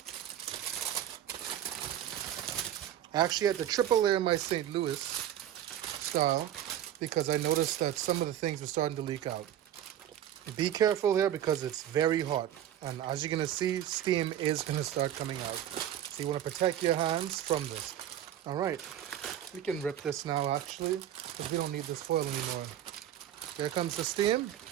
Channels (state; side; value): quieter; left; 11.3 dB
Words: I actually had to triple layer my St. Louis style because I noticed that some of the things were starting to leak out. Be careful here because it's very hot. And as you're going to see, steam is going to start coming out. So you want to protect your hands from this. All right. We can rip this now, actually, because we don't need this foil anymore. There comes the steam.